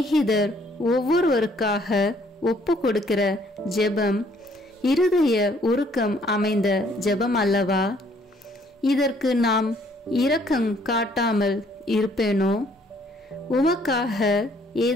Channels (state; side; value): normal; both; correlation 0.63